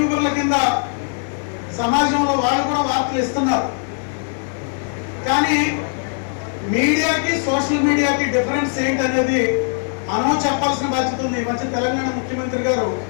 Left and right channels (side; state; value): right; silent; 60 dB below the other